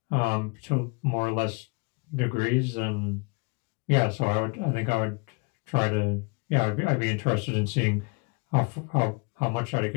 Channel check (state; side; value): quieter; right; 31.0 dB